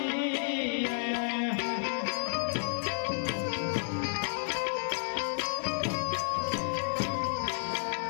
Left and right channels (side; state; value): right; silent; 57 dB below the other